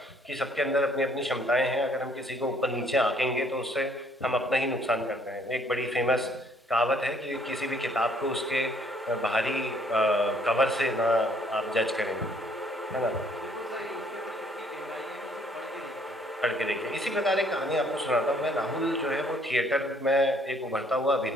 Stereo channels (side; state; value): both; normal; correlation 0.63